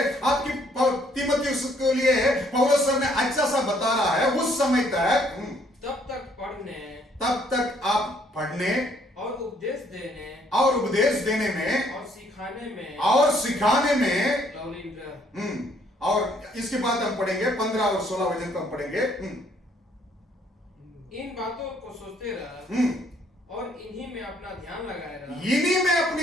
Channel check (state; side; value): normal; both; correlation 0.66